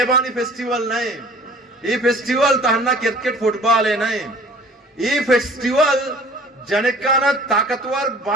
फेस्टिवल नहीं ये फेस्टिवल तहन्ना क्रिकेट फुटबॉल है नहीं ये फेस्टिवल जनकाना ताकतवर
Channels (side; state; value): both; normal; correlation 0.49